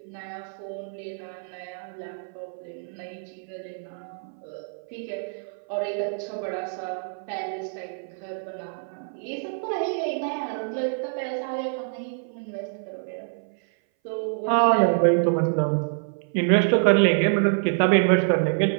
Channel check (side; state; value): left; silent; 59 dB below the other